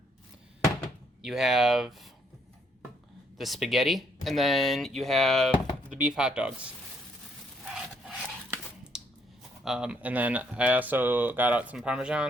you have the spaghetti, and then you have the beef hot dogs. And then I also got out some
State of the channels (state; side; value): normal; both; correlation 0.70